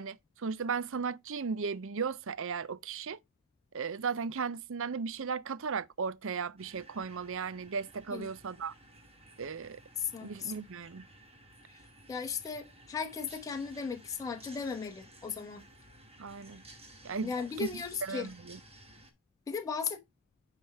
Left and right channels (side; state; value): both; normal; correlation -0.02